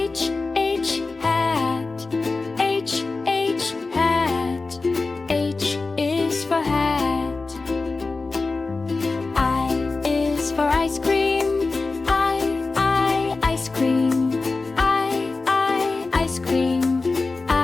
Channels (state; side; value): quieter; right; 3.8 dB